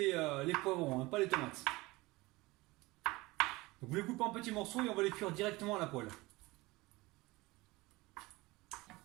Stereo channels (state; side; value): quieter; left; 21.5 dB